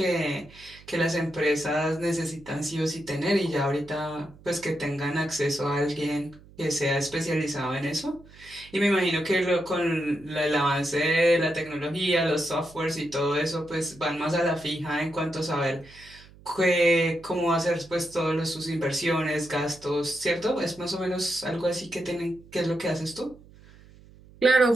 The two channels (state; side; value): noise; right; hum, 23 dB below the sound